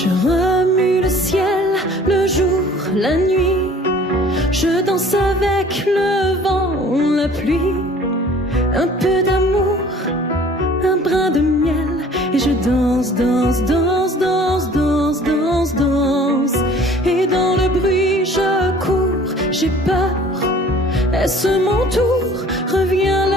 remue le ciel, le jour, la nuit. Je danse avec le vent, la pluie. Un peu d'amour, un brin de miel. Et je danse, danse, danse, danse, danse, danse, danse. Et dans le bruit je cours, j'ai peur. Est-ce mon tour? Revient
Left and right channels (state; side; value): normal; both; correlation 0.51